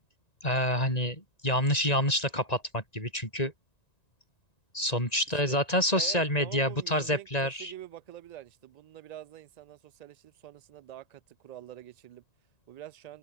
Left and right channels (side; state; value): right; late; 1.9 ms